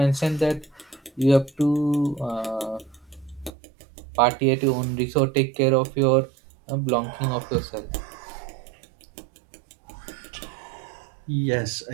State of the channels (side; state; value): left; drops out; at 3.5 s